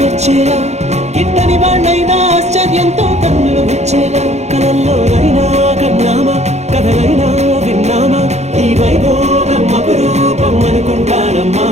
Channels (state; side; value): late; left; 0.32 ms